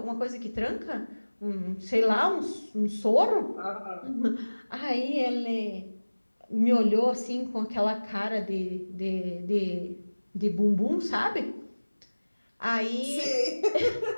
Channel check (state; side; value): inverted; both; correlation -1.00